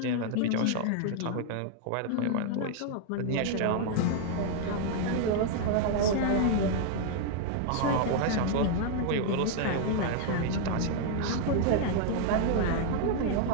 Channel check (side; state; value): both; different; correlation 0.00